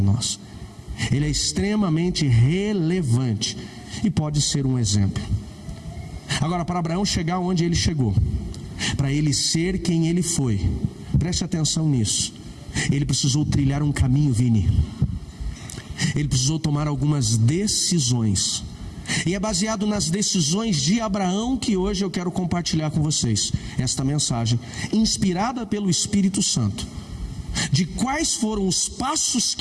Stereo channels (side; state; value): both; identical; correlation 1.00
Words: nós. Ele é extremamente relevante e pode ser um exemplo. Agora, para Abraão chegar onde ele chegou, para ele ser quem ele foi, preste atenção nisso, ele precisou trilhar um caminho, Vini. Ele precisou tomar algumas decisões, e é baseado nas decisões de Abraão que hoje eu quero compartilhar com vocês esta mensagem, inspirada pelo Espírito Santo. de quais foram os passos